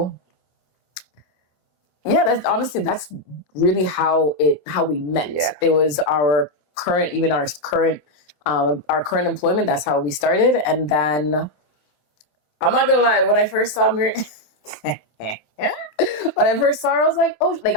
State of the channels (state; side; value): late; right; 27 ms